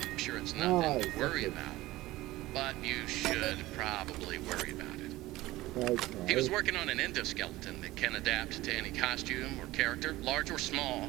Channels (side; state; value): left; quieter; 17.9 dB